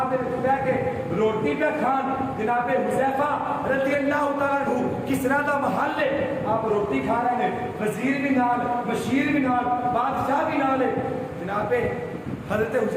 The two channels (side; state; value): both; identical; correlation 1.00